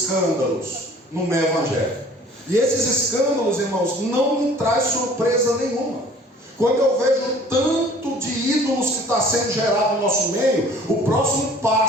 no meio evangélico. E esses escândalos, irmãos, não me traz surpresa nenhuma. Quando eu vejo tanto de ídolos que está sendo gerado no nosso meio, o próximo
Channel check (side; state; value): both; normal; correlation 0.51